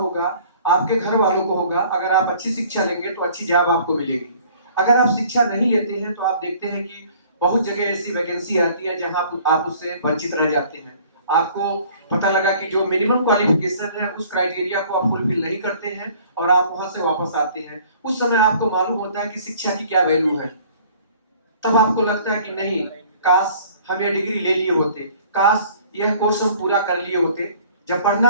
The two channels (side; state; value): both; inverted; correlation -0.53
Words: आपके घर वालों को होगा। अगर आप अच्छी शिक्षा लेंगे तो अच्छी जॉब आपको मिलेगी। अगर आप शिक्षा नहीं लेते हैं तो आप देखते हैं कि बहुत जगह ऐसी वैकेंसी आती है जहां आप उससे वंचित रह जाते हैं। आपको पता लगा कि जो मिनिमम क्वालिफिकेशन है उस क्राइटेरिया को आप फुलफिल नहीं करते हैं और आप वहां से वापस आते हैं। उस समय आपको मालूम होता है कि शिक्षा की क्या वैल्यू है। तब आपको लगता है कि नहीं, काश हम ये डिग्री ले लिए होते, काश यह कोर्स हम पूरा कर लिए होते। जब